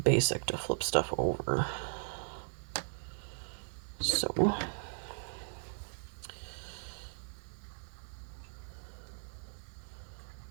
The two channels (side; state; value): left; silent; digital silence